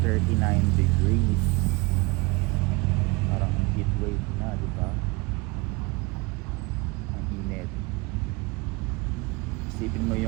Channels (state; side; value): quieter; left; 25.4 dB